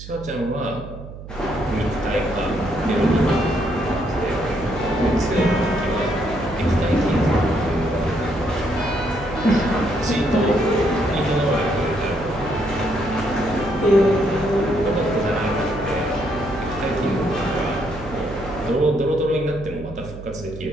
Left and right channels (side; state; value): right; noise; hum, 13 dB below the sound